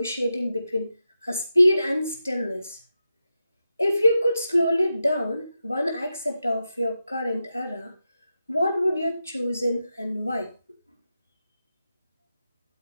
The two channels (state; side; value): inverted; both; correlation -0.89